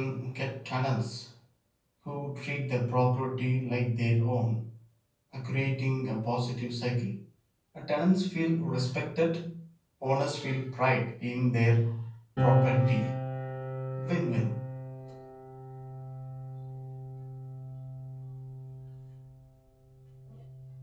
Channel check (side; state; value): both; identical; correlation 1.00